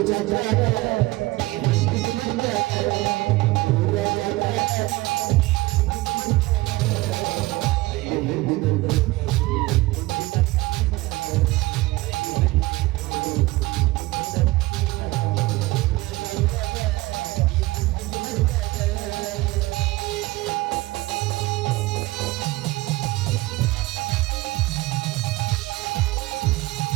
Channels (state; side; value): quieter; left; 20.3 dB